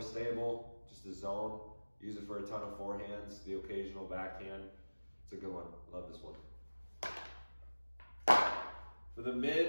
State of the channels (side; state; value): both; inverted; correlation -1.00